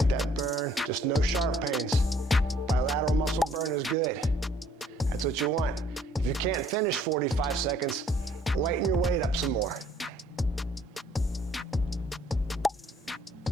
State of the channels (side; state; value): both; normal; correlation 0.61